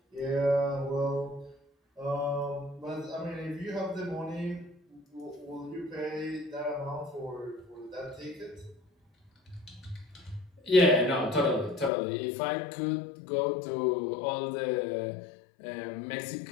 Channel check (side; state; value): right; drops out; at 11.9 s